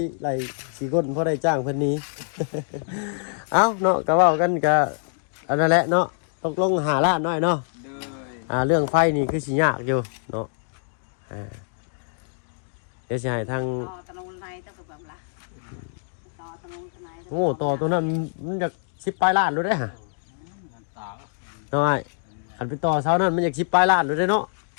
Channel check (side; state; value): right; silent; digital silence